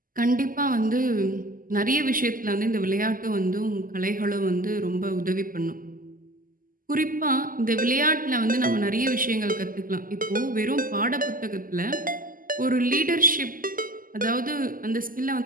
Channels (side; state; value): left; late; 0.41 ms